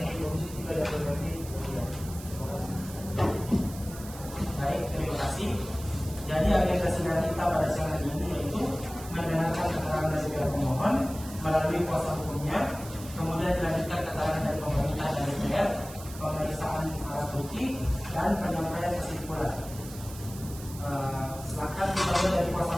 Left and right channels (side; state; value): right; noise; hiss, 15 dB below the sound